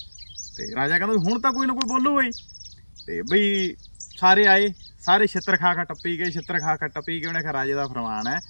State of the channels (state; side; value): inverted; both; correlation -1.00